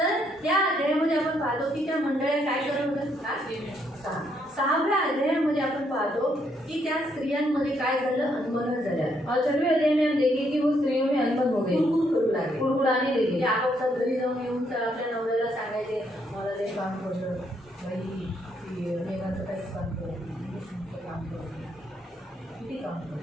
त्या अध्यायामध्ये आपण पाहतो की त्या मंडळ्या काय करत होत्या. 6व्या अध्यायामध्ये आपण पाहतो की त्या स्त्रियांमध्ये काय झालं, अनबन झाल्या. और 6वें अध्याय में हम देखें कि वो स्त्रियों में अनबन हो गई, कुरकुर करू लागले, कुड़कुड़ाने लगी। की आपापसात घरी जाऊन येऊन तर आपल्या नवऱ्याला सांगायचे मला ते काम करतं, बाई मेघाचं काहीच काम करत नाही, काम करत नाही, किती काम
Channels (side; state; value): both; normal; correlation 0.73